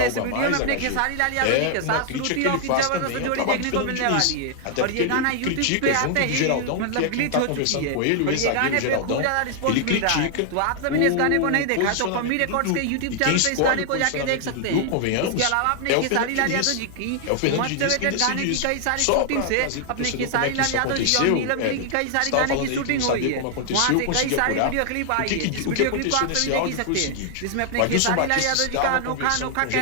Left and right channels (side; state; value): both; different; correlation 0.00